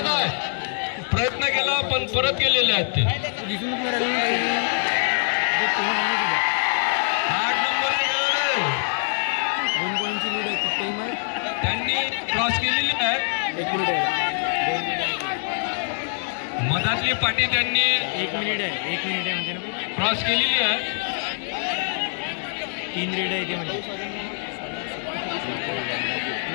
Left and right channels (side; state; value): right; silent; digital silence